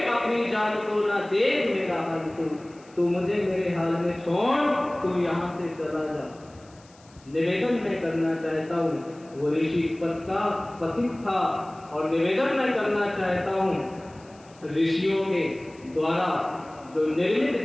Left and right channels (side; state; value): left; noise; hiss, 28 dB below the sound